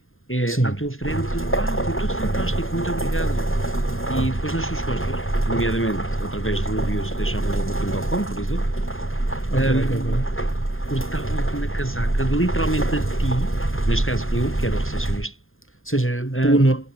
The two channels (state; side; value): late; right; 0.60 ms